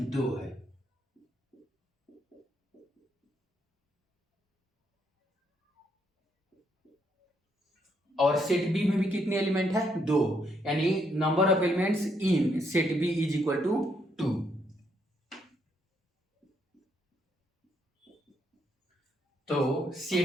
2 है। और सेट बी में भी कितने एलिमेंट है, 2, यानी number of elements in set B is equal to 2। तो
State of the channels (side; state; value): both; normal; correlation 0.74